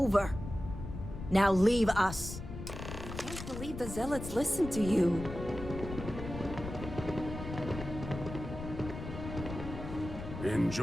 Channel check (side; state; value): left; noise; rumble, 9 dB below the sound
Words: Now leave us. I can't believe the Zealots listened to you.